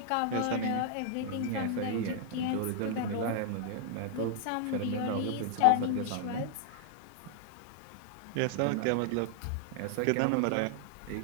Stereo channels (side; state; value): both; different; correlation -0.01